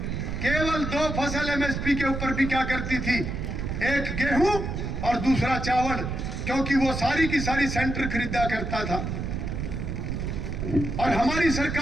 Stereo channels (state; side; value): noise; right; rumble, 3 dB below the sound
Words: केवल 2 फसल एमएसपी के ऊपर भी क्या करती थी, एक गेहूं और दूसरा चावल, क्योंकि वो सारी की सारी सेंटर खरीदा करता था। और हमारी